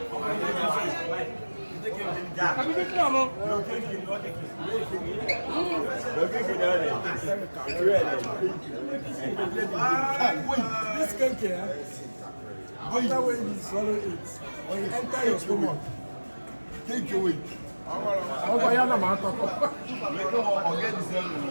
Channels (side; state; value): both; inverted; correlation -1.00